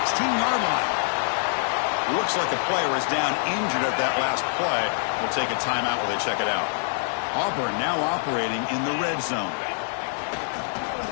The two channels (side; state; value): right; silent; digital silence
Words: line. Looks like the player is down injured at that last play. We'll take a timeout while they check it out. Auburn now operating in the red zone.